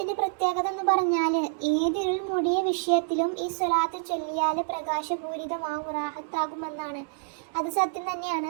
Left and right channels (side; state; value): left; silent; digital silence